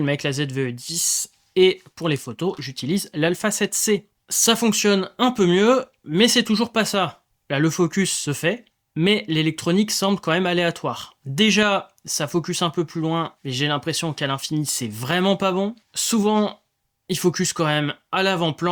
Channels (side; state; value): both; identical; correlation 1.00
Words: avec la ZVE10 et pour les photos, j'utilise l'Alpha 7C. Ça fonctionne un peu mieux, mais c'est toujours pas ça. Là, le focus se fait, mais l'électronique semble quand même aléatoire. Déjà, ça focus un peu plus loin, mais j'ai l'impression qu'à l'infini, c'est vraiment pas bon. Souvent, il focus quand même à